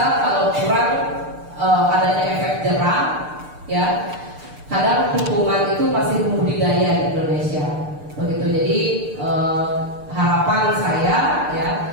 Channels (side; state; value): left; late; 6.7 ms